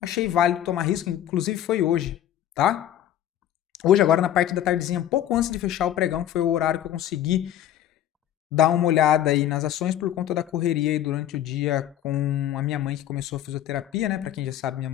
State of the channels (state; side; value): quieter; right; 11.5 dB